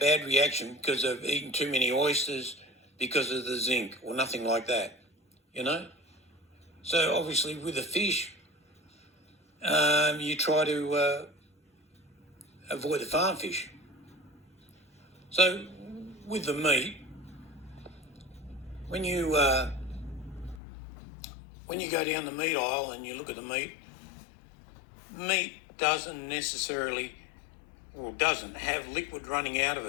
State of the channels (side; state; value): right; drops out; at 20.6 s